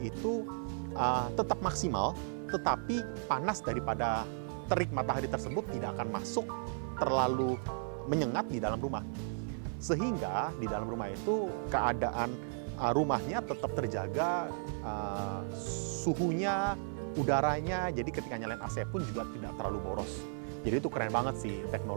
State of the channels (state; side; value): silent; left; 55 dB below the other